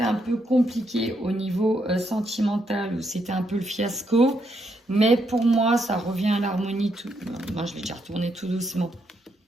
un peu compliquée au niveau sentimental, où c'était un peu le fiasco. Mais pour moi, ça revient à l'harmonie. Moi, je vais déjà retourner tout doucement.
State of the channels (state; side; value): normal; both; correlation 0.78